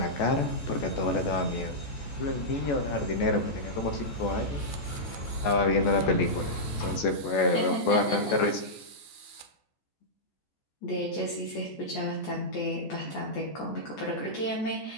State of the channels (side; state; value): right; late; 14 ms